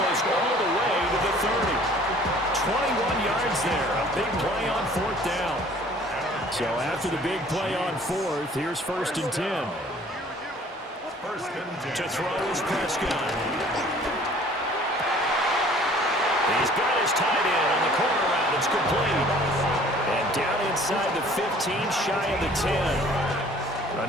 all the way to the 30. 21 yards there. A big play on 4th down. So after the big play on 4th, here's 1st and 10. 1st and 10. To throw is Prescott. He's got his tight end on the corner route. It's complete. And down inside the 15, shy of the 10.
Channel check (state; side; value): normal; both; correlation 0.53